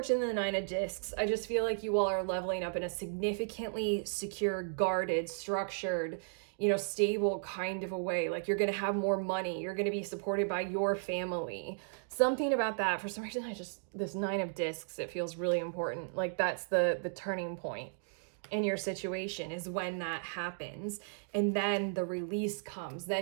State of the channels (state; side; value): silent; left; digital silence